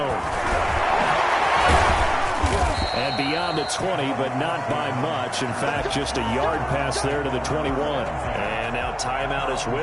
And beyond the 20, but not by much. In fact, just a yard pass there to the 21. And now timeout is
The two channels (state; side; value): identical; both; correlation 1.00